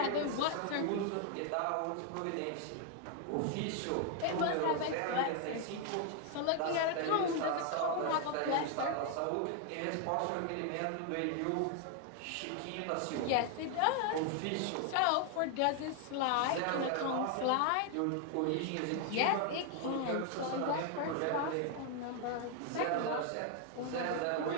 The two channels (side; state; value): both; different; correlation 0.00